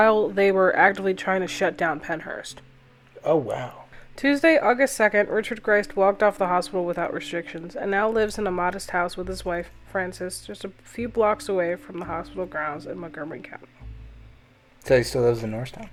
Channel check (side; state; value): both; identical; correlation 1.00